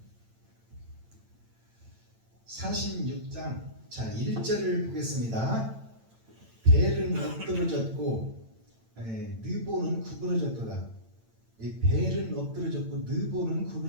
46장 자 1절을 보겠습니다. 벨은 엎드러졌고 느보는 구부러졌도다. 이 벨은 엎드러졌고 느보는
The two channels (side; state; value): left; late; 8.9 ms